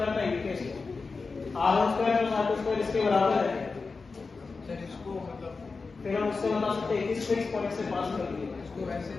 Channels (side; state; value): right; quieter; 4.3 dB